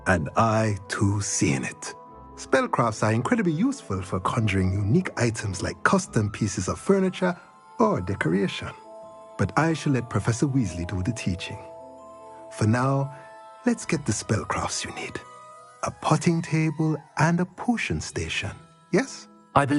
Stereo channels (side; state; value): both; identical; correlation 1.00